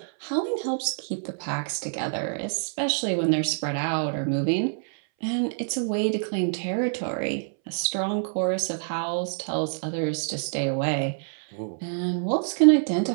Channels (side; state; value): left; silent; 61 dB below the other